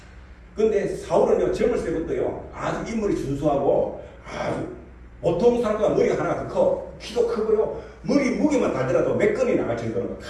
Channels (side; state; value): both; identical; correlation 1.00